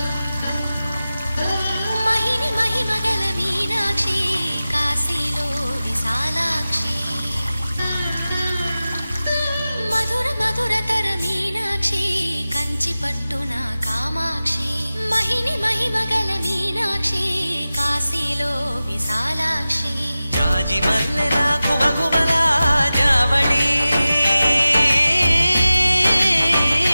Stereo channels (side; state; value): both; inverted; correlation -0.95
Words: మహిని మహిమగల మీనాక్షి కాశీలో విశాలాక్షి మధుర మధురతర మీనాక్షి కంచి పట్టున కామాక్షి మహిని మహిమగల మీనాక్షి కాశీలో విశాలాక్షి జాజి మల్లెలా గుమగుమలా జావళి